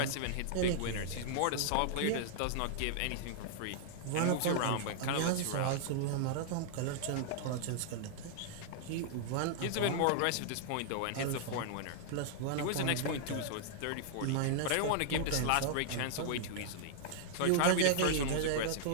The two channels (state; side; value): different; both; correlation -0.01